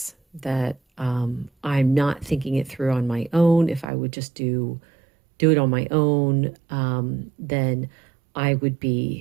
that I'm not thinking it through on my own. If I would just do it on my own, then I would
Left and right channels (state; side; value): drops out; left; at 3.9 s